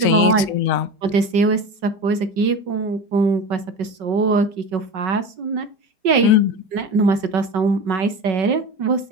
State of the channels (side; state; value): left; late; 5.3 ms